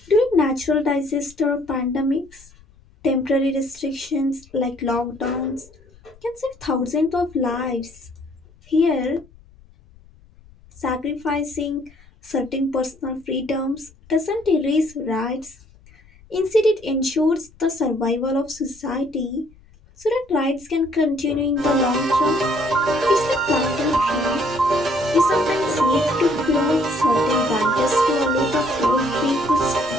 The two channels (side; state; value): left; noise; rumble, 27 dB below the sound